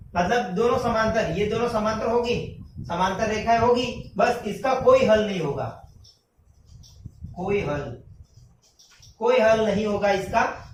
मतलब दोनों समांतर, ये दोनों समांतर होगी, समांतर रेखाएं होगी। बस इसका कोई हल नहीं होगा, कोई हल नहीं होगा इसका।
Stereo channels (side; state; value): both; identical; correlation 1.00